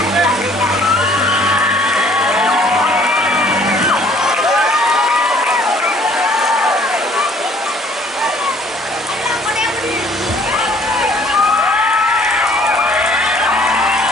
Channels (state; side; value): normal; both; correlation 0.58